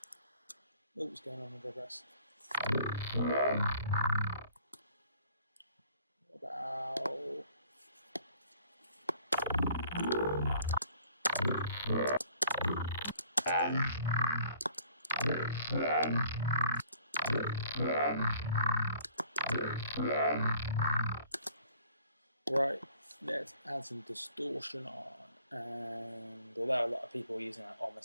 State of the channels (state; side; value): inverted; both; correlation -0.55